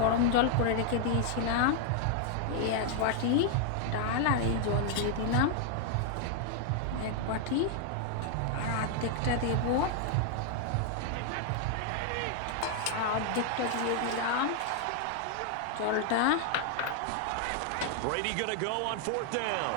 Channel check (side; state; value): both; different; correlation 0.00